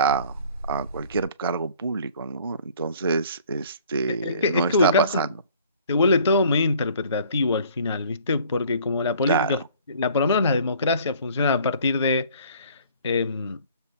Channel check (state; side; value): inverted; both; correlation -0.53